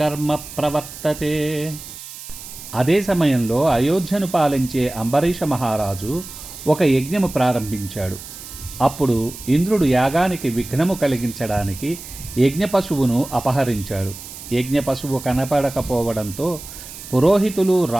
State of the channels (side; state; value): right; noise; hiss, 13 dB below the sound